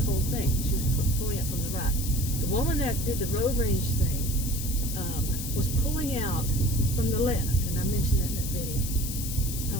thing. She was pulling out from the right. The woman that did the road rage thing was pulling out from the left, and I mentioned that in that video. I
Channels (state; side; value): noise; left; hiss, 6 dB below the sound